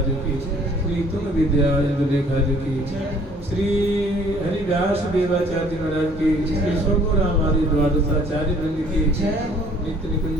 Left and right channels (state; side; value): normal; both; correlation 0.57